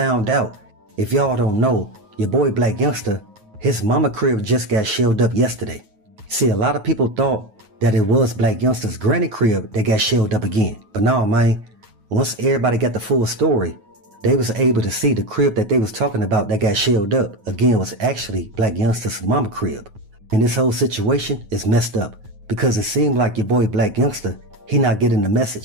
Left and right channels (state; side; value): late; left; 9.3 ms